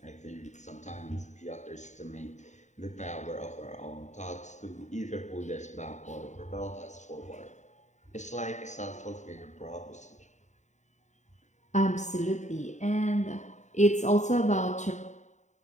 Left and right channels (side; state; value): right; late; 0.34 ms